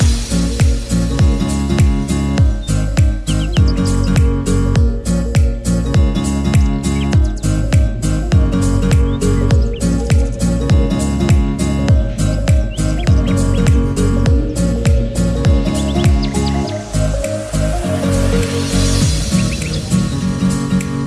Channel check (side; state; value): both; identical; correlation 1.00